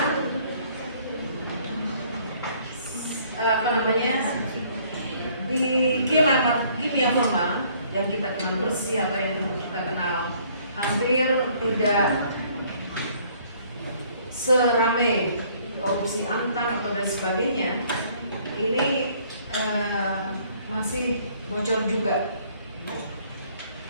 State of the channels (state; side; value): inverted; both; correlation -0.61